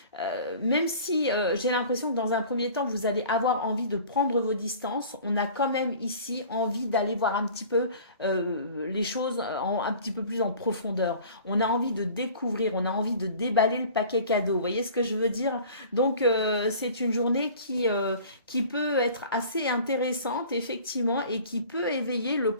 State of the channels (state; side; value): inverted; both; correlation -0.45